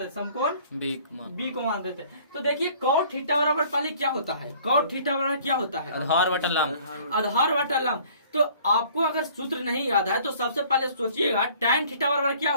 हैं, समकोण बी को मान देते हैं। तो देखिए cot थीटा बराबर पहले क्या होता है, cot थीटा बराबर क्या होता है? आधार बटा लंब। आधार बटा लंब। तो आपको अगर सूत्र नहीं याद है तो सबसे पहले सोचिएगा tan थीटा बराबर क्या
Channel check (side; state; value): both; inverted; correlation -0.54